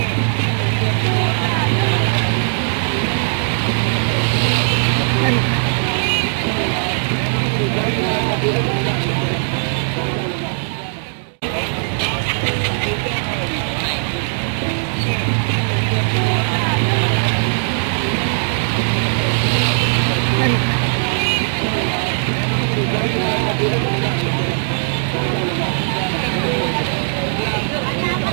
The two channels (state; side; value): silent; left; digital silence